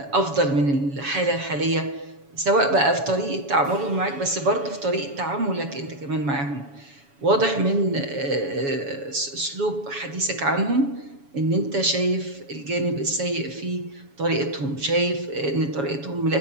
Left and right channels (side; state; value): left; late; 7.1 ms